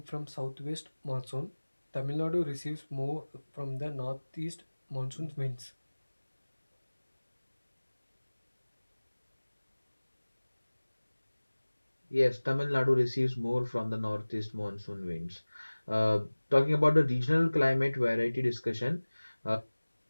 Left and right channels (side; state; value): both; inverted; correlation -1.00